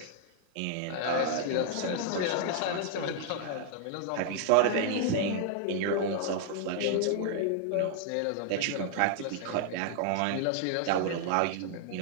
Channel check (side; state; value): both; different; correlation -0.01